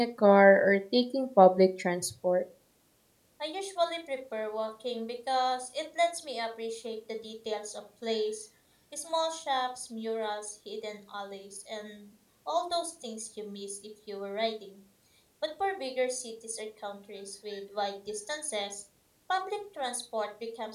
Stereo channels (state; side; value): identical; both; correlation 1.00